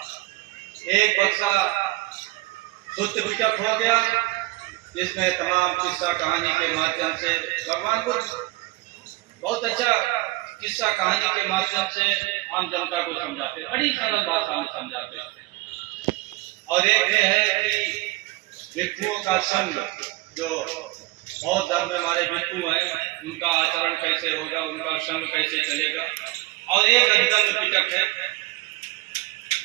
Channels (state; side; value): quieter; left; 20.1 dB